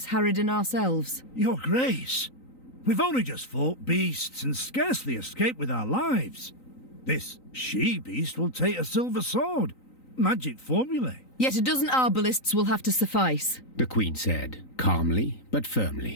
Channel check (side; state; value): right; late; 3.9 ms